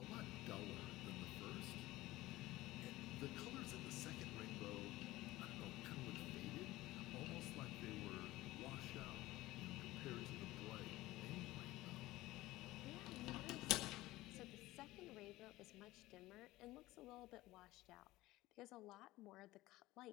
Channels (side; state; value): right; quieter; 17.9 dB